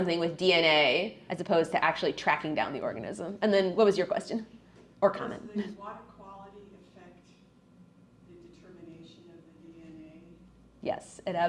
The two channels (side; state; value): both; identical; correlation 1.00